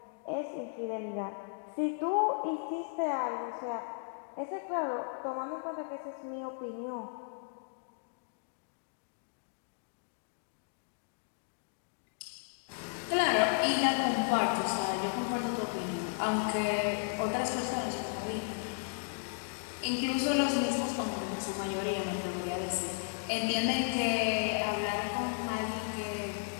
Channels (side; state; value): right; silent; digital silence